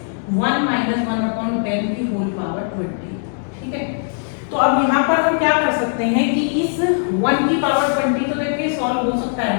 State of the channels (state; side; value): silent; right; digital silence